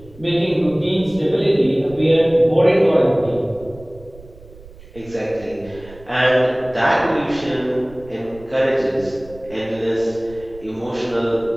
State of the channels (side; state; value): right; noise; rumble, 21 dB below the sound